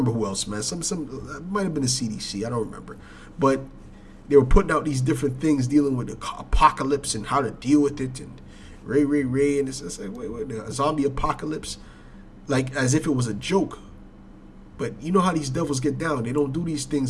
who else, man. Some it might have been the CDC. I don't remember, but they were putting out these different things dealing with the apocalypse and how to deal with it, and Ray, and it's like wait, the zombie apocalypse, like as if it was a joke. But you know how these devils get down. They don't do these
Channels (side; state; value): both; identical; correlation 1.00